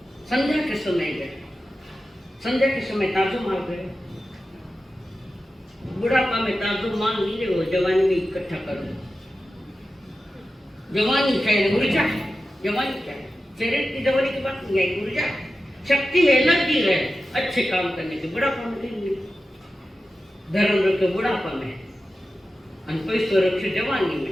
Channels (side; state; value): both; normal; correlation 0.92